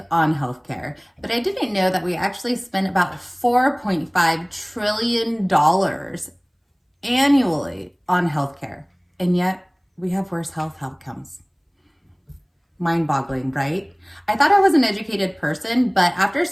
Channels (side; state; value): both; identical; correlation 1.00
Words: on healthcare, but I didn't know that we actually spent about $4.5 trillion annually on healthcare. And yet we have worse health outcomes. Mind-boggling, right? I thought I was an educated person, but after